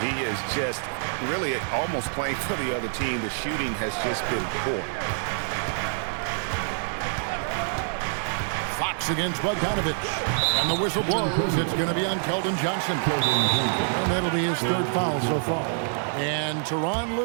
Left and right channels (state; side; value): silent; left; digital silence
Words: He is just really almost playing for the other team. The shooting has just been poor. Fox against Bogdanovic. And the whistle blows. It's going to be on Keldon Johnson. And that'll be his 3rd foul so far. And Tyronn